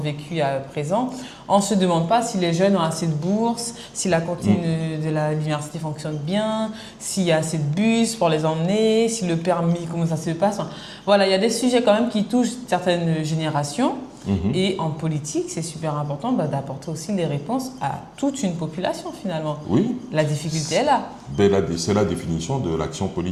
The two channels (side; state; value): both; identical; correlation 1.00